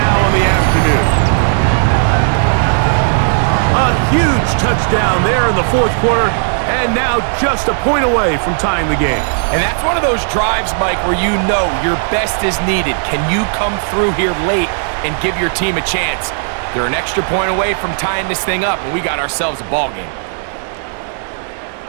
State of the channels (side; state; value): left; silent; digital silence